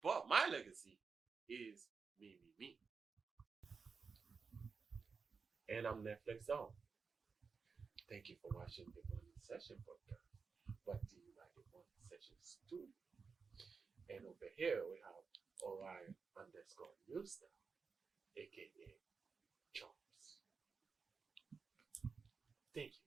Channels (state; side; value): quieter; left; 5.2 dB